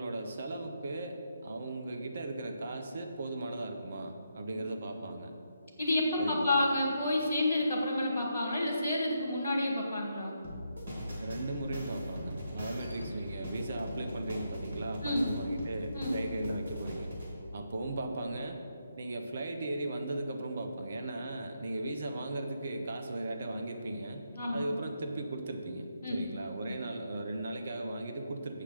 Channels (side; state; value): both; inverted; correlation -0.80